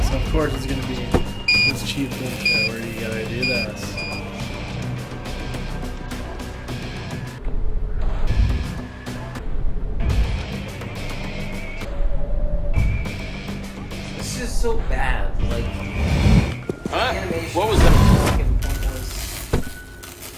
so of course it's gonna be this cheap bullshit where you gotta do this. This is so bad. Like, Huh? animation. What was that? Fucking pointless.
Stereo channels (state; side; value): identical; both; correlation 1.00